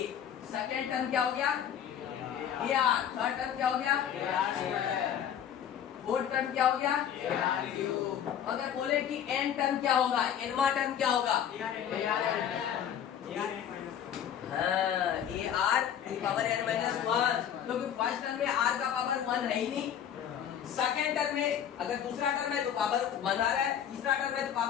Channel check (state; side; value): quieter; right; 9.3 dB